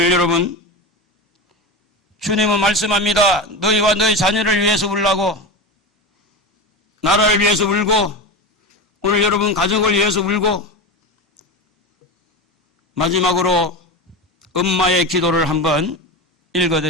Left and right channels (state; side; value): normal; both; correlation 0.22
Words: 여러분, 주님은 말씀합니다. 너희와 너희 자녀를 위해서 울라고, 나라를 위해서 울고, 오늘 여러분 가족을 위해서 울고. 마지막으로 엄마의 기도를 한번